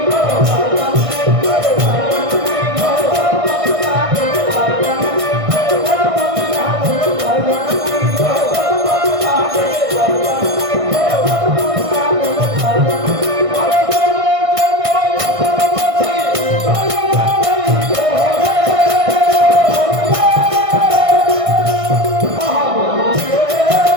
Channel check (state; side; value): late; left; 1.6 ms